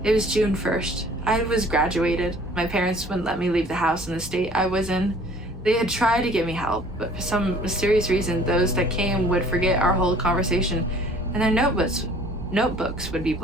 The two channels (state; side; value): normal; both; correlation 0.52